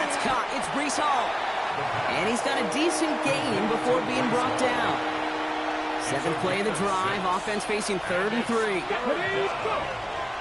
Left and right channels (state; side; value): identical; both; correlation 1.00